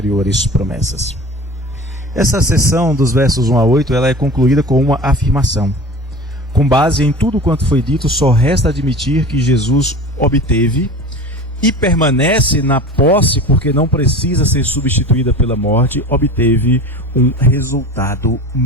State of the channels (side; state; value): both; normal; correlation 0.36